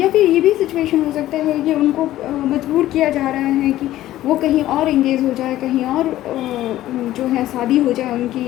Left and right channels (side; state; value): right; quieter; 14.4 dB